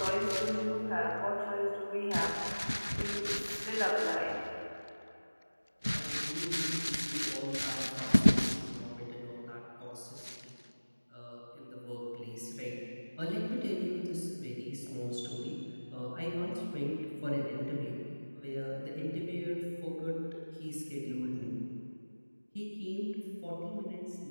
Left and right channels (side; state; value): both; inverted; correlation -1.00